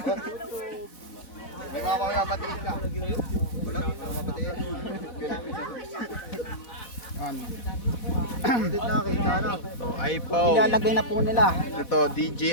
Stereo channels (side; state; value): right; late; 4.1 ms